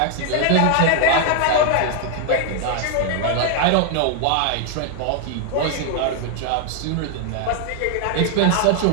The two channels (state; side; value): different; both; correlation 0.00